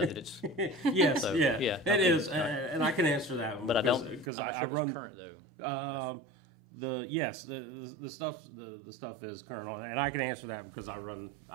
that it's yes, so, yeah, it is, and I can answer that one. But I'm not sure if it's current though. The stuff is current on, and I can answer that because I run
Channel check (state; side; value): drops out; left; at 4.2 s